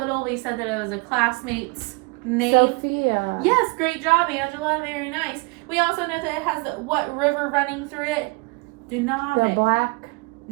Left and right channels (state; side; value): quieter; left; 28.2 dB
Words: We said that it was a classmate's name. Sofia. Yes, great job, Angela. Very nice. We also know that it has what river running through it? Danube. The Black.